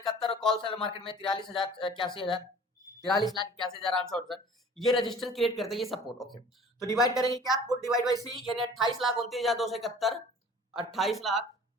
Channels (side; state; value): both; normal; correlation 0.47